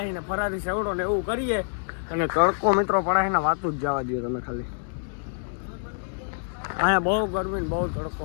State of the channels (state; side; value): silent; right; digital silence